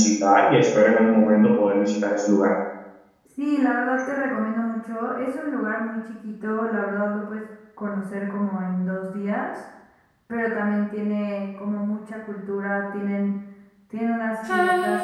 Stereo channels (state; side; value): identical; both; correlation 1.00